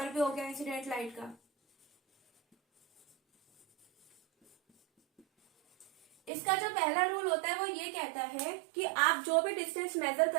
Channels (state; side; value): drops out; left; at 6.3 s